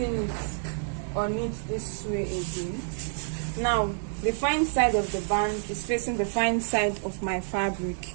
it on it this way again. Now the fine side of the band is facing the fine side of my fabric.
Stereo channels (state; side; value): silent; left; digital silence